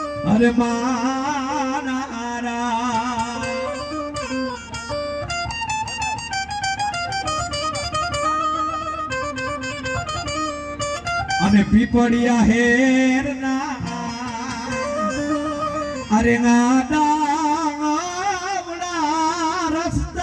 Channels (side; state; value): both; identical; correlation 1.00